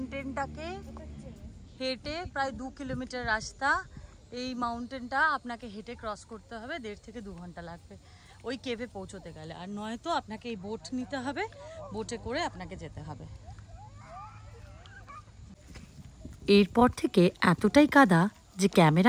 হেঁটে প্রায় 2 কিলোমিটার রাস্তা এই মাউন্টেনটা আপনাকে হেঁটে ক্রস করতে হবে, 1.5 থেকে 2 ঘন্টা লাগবে ওই কেভে পৌঁছতে গেলে। আর নয়তো আপনাকে এই বোট নিতে হবে, বোটে করে আপনাকে যেতে হবে। এরপর থেকে এতটাই কাদা যে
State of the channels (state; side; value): identical; both; correlation 1.00